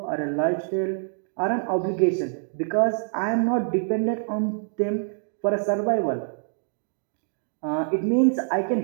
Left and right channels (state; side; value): silent; left; digital silence